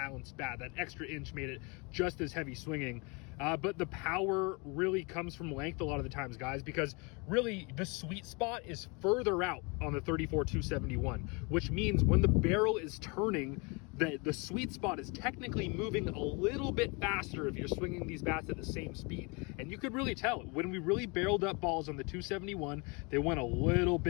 bat. That extra inch made it just as heavy swinging. But the power really comes from length a lot of the times, guys, because really the sweet spot is further out on the 34-271, which means when the barrel is turning, the sweet spot is technically moving a little bit faster if you're swinging these bats at the same speed. And you could really tell when we really barreled up balls on the 271, they went a little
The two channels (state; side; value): quieter; right; 30.0 dB